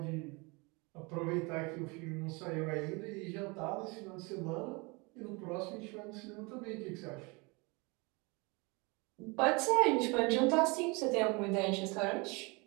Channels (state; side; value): quieter; left; 28.0 dB